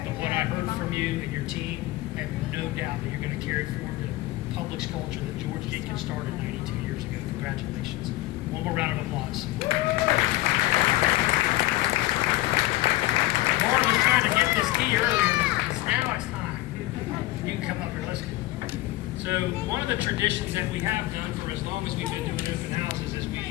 what I heard from you and your team, I have no doubt that you're going to carry forward the Publix culture that George Jenkins started 92 years ago. Congratulations. One more round of applause. Lauren was trying to get this key earlier. Now it's time. You can come up here. Let's go. So one of the traditions that we have done for as long as we've been doing open houses is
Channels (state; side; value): quieter; right; 17.7 dB